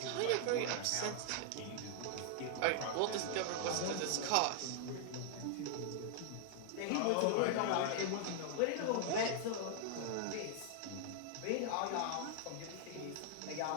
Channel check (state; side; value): different; both; correlation 0.00